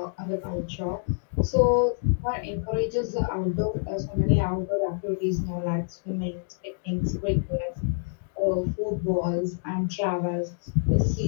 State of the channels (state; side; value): silent; right; digital silence